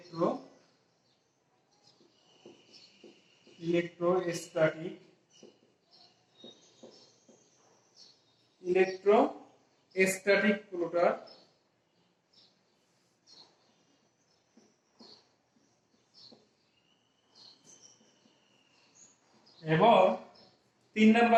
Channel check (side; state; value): both; identical; correlation 1.00